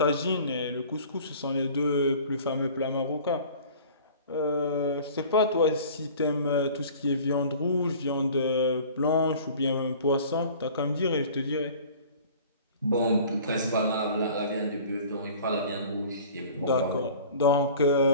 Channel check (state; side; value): inverted; both; correlation -0.45